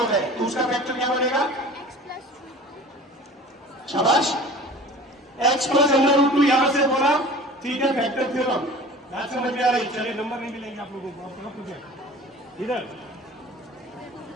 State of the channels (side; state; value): both; normal; correlation 0.42